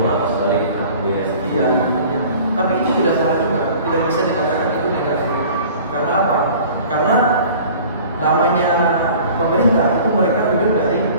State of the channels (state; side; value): inverted; both; correlation -0.46